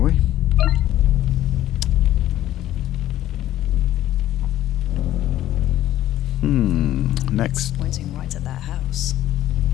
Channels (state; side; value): quieter; right; 13.3 dB